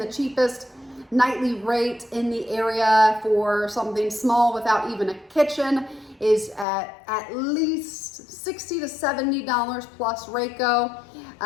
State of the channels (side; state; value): right; drops out; at 6.7 s